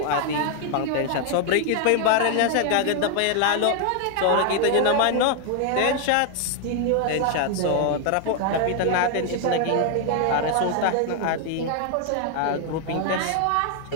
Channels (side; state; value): both; different; correlation 0.00